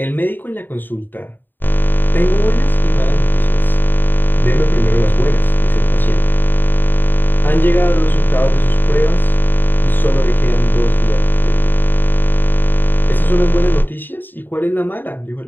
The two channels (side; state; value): right; late; 0.092 ms